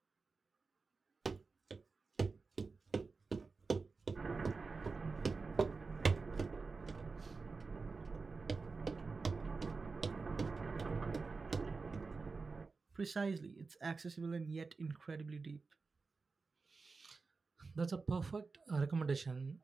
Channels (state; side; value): quieter; left; 4.3 dB